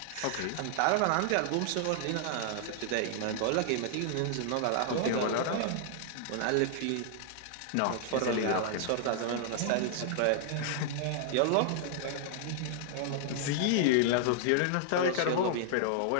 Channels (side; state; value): both; different; correlation -0.01